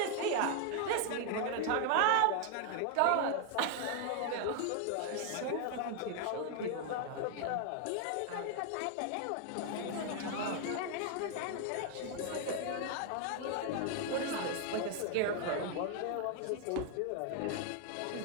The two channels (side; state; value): both; different; correlation 0.00